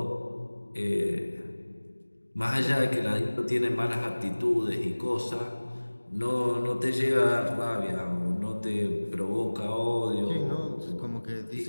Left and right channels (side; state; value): both; inverted; correlation -1.00